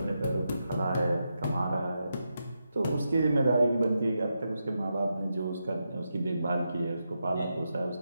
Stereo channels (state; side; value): inverted; both; correlation -0.86